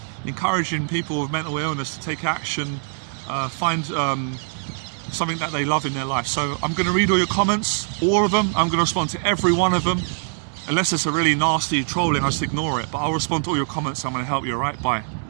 encouraging people with mental illness to take action, find something that they love in their life. So I'm going to read all your comments, all of them. I'm going to respond to every one of them. Unless it's a really nasty trolling, I just ignore it. But I'll respond to all your comments. I'm going to help you, all right? Bye.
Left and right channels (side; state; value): left; silent; digital silence